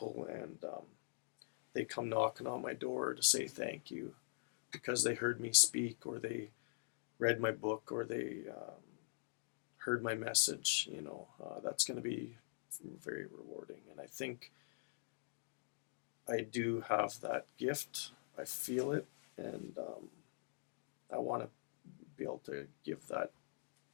and they come knocking on my door to say thank you because they heard me speak, or they read my book, or they heard my message. That's going to be very rewarding. And I think I do have that gift. I feel it, and I want to be able to give that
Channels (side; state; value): right; silent; digital silence